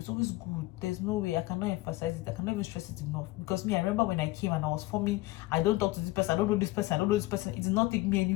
always good. There's no way, I cannot emphasize it. I cannot even stress it enough. Because me, I remember when I came and I was forming, I don't talk to this person, I don't know this person, I don't know this person. It did not take me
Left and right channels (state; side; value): quieter; right; 19.5 dB